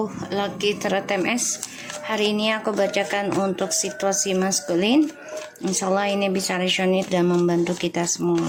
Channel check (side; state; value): both; identical; correlation 1.00